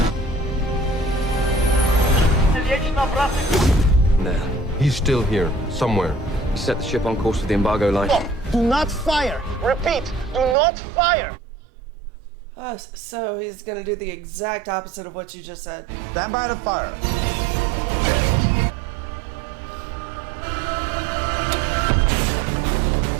Nah. He's still here, somewhere. He set the ship on course for the embargo line. Do not fire! Repeat, do not fire! Oh, so he's gonna do the exact opposite of what you just said. Stand by to fire.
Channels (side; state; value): left; drops out; at 10.6 s